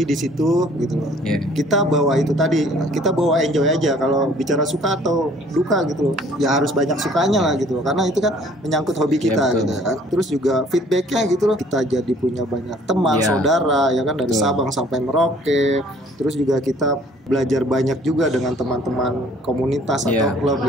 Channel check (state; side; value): normal; both; correlation 0.56